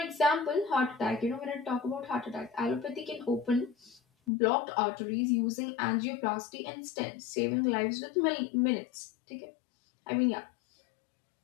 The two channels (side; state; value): right; drops out; at 4.3 s